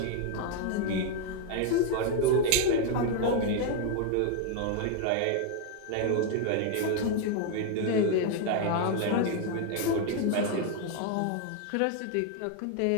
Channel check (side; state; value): both; different; correlation 0.00